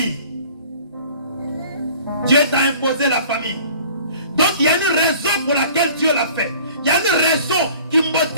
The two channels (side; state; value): both; inverted; correlation -0.49